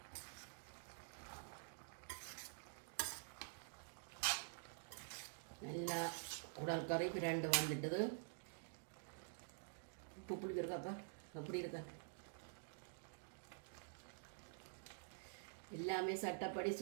நல்லா குடல் கறி பிரண்டு வந்துட்டுது. உப்பு புளி இருக்காப்பா எப்படி இருக்க? எல்லாமே சட்டப்படி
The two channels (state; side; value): silent; left; digital silence